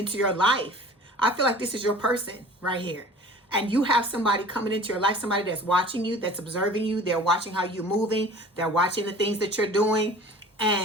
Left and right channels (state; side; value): normal; both; correlation 0.44